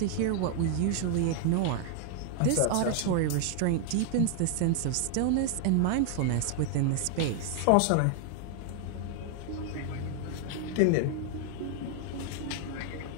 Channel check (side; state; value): both; different; correlation 0.00